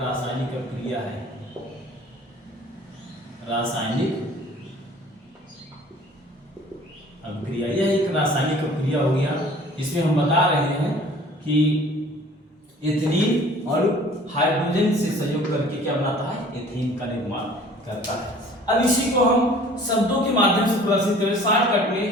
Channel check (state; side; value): normal; both; correlation 0.50